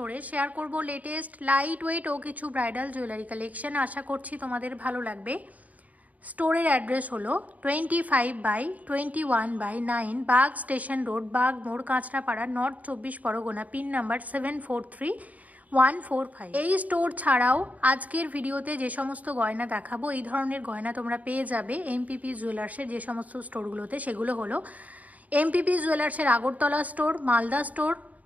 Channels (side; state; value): left; late; 0.073 ms